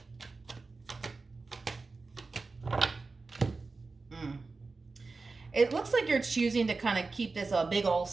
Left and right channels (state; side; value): quieter; left; 3.9 dB